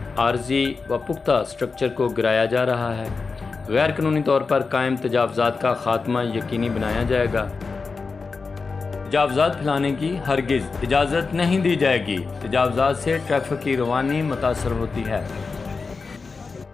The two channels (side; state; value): right; quieter; 4.5 dB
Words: आर्जी व पुख्ता स्ट्रक्चर को गिराया जा रहा है। गैर कानूनी तौर पर कायम तजावज़ात का खात्मा यकीनी बनाया जाएगा। तजावज़ात फैलाने की हरगिज़ इजाज़त नहीं दी जाएगी। तजावज़ात से ट्रैफिक की रवानी मुतासर होती है।